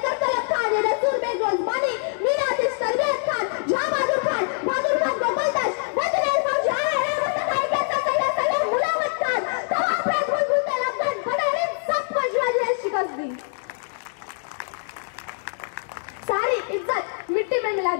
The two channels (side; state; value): right; silent; digital silence